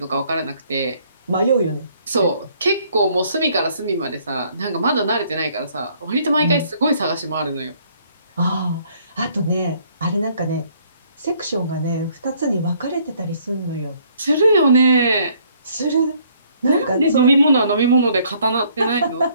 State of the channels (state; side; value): inverted; both; correlation -0.64